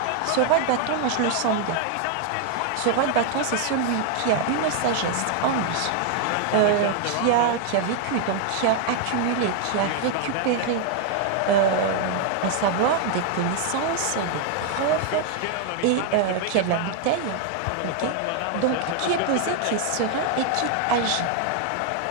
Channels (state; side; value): different; both; correlation 0.00